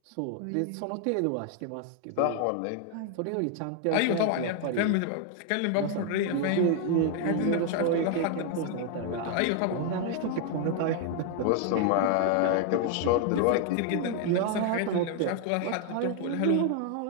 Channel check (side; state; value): both; different; correlation 0.00